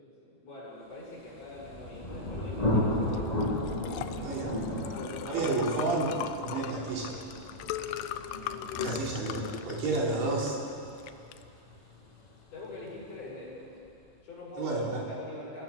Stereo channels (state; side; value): normal; both; correlation -0.06